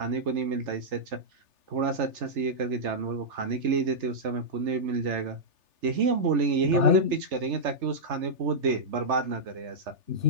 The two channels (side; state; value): left; late; 3.4 ms